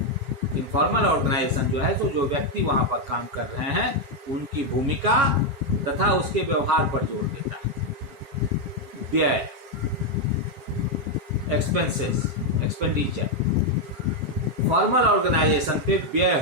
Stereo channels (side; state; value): left; late; 7.2 ms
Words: इनफॉर्मल ऑर्गेनाइजेशन जो है तो जो व्यक्ति वहां पर काम कर रहे हैं उनकी भूमिका तथा उसके व्यवहार पर जोर देता है। व्यय, एक्सपेंसेस, एक्सपेंडिचर, फॉर्मल ऑर्गेनाइजेशन पे व्यय